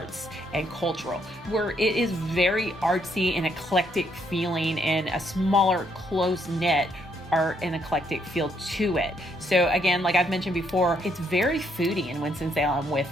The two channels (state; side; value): normal; both; correlation 0.72